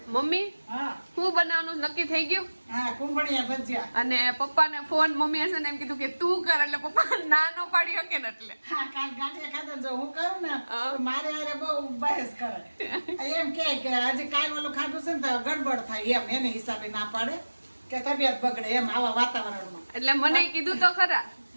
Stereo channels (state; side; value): inverted; both; correlation -1.00